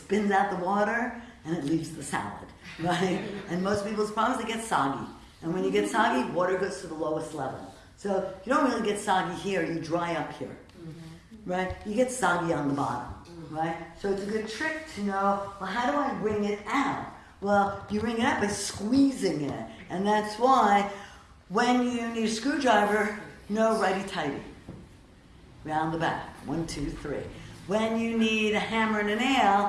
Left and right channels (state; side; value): identical; both; correlation 1.00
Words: out the water and it leaves the salad. Right? And most people's problems, they get soggy. And when you get soggy, water goes to the lowest level. So you don't really get soggy here, you dry up here. Right? You get soggy on the bottom. Right? So it's a good trick to know, well, how do I bring it out? Well, you bring it out by squeezing it. And that's why when you need a screwdriver, no righty-tighty. round the back. 1, 2, 3. When you need a hammer and a